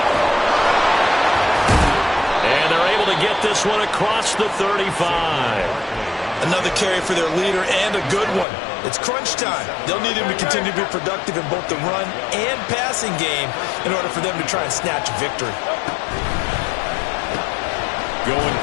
And they're able to get this one across the 35. Another carry for their leader, and a good one. It's crunch time. They'll need him to continue to be productive in both the run and passing game in order for them to try and snatch a victory. Going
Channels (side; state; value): right; drops out; at 8.5 s